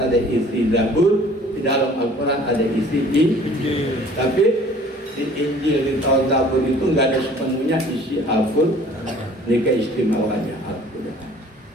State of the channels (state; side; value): normal; both; correlation 0.52